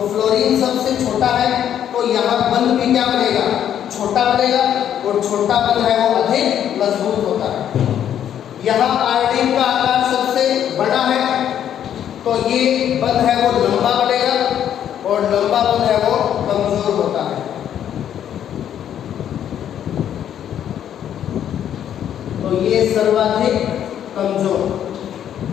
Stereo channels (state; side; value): quieter; right; 9.9 dB